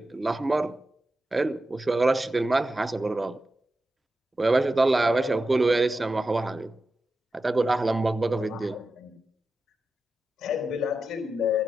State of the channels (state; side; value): normal; both; correlation 0.91